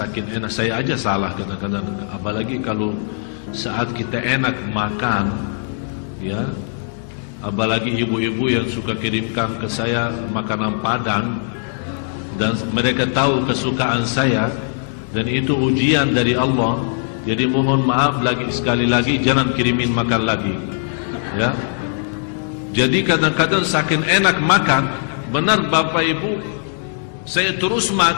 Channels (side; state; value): right; silent; 66 dB below the other